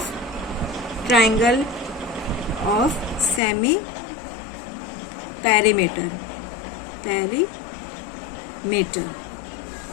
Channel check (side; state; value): right; drops out; at 3.4 s